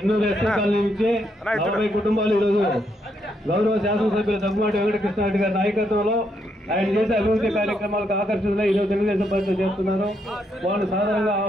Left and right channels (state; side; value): normal; both; correlation 0.77